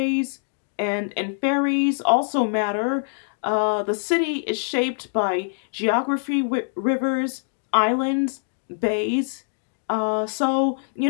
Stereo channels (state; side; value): silent; right; digital silence